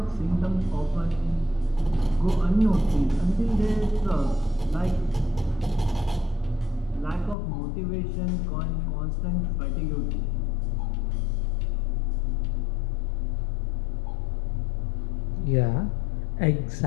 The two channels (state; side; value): drops out; right; at 7.4 s